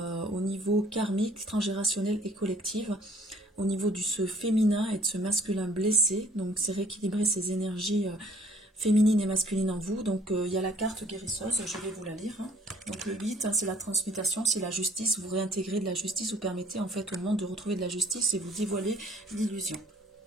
au niveau karmique, transgénérationnel et collectif, au niveau du ce féminin et de ce masculin blessé. Donc c'est rééquilibrer ces énergies féminines et masculines en vous. Donc il y a la carte guérisseuse, je vais vous la lire. Donc le 8, c'est la transmutation, c'est la justice, vous réintégrez de la justice, vous permettez en fait au monde de retrouver de la justice et vous dévoilez l'illusion.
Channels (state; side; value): normal; both; correlation 0.57